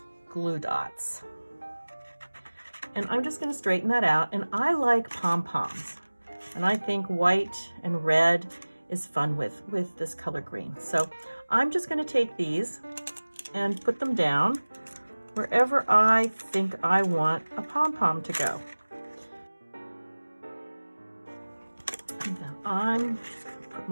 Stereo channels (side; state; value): both; inverted; correlation -1.00